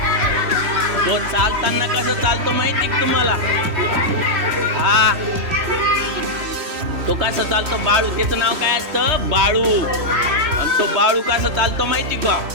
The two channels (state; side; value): late; left; 3.1 ms